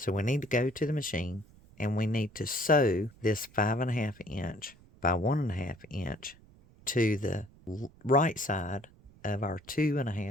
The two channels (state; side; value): noise; right; rumble, 25 dB below the sound